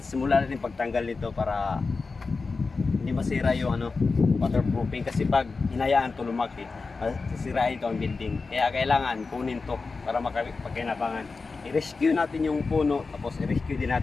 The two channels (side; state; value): right; quieter; 4.2 dB